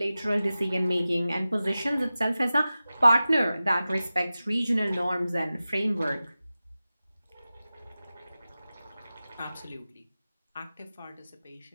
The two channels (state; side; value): inverted; both; correlation -0.95